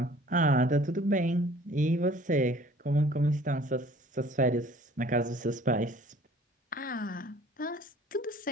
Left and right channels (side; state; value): both; normal; correlation 0.52